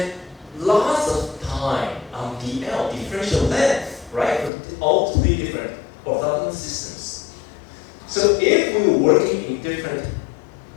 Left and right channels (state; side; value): drops out; right; at 4.5 s